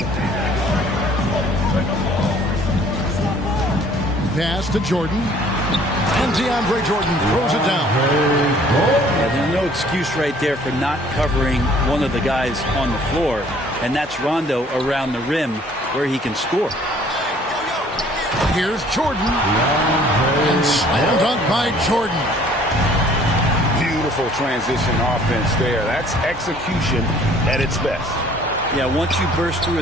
pass to Jordan. And DeAndre Jordan throws it down. Yeah, there's no excuse right there for not covering one of the guys on the floor. And that's Rondo around the rim where he can score. Here's Jordan. And slam dunk by Jordan. Beautiful transition offense there. That's execution at its best. Yeah, once you burst through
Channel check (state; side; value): normal; both; correlation 0.56